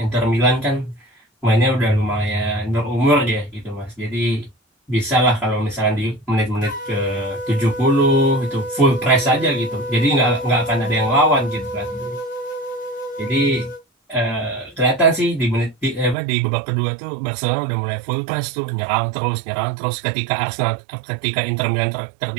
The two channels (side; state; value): left; drops out; at 16.2 s